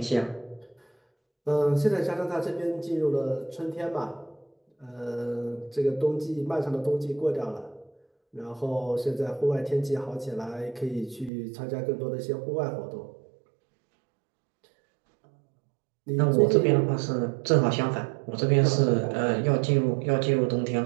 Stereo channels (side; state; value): left; drops out; at 11.3 s